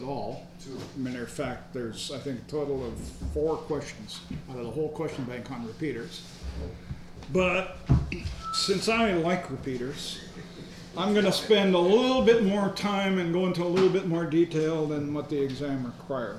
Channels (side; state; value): both; identical; correlation 1.00